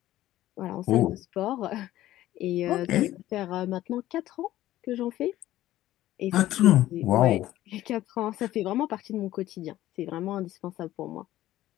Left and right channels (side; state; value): right; quieter; 14.6 dB